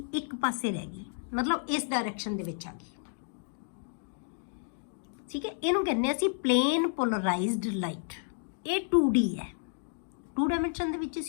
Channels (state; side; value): silent; right; digital silence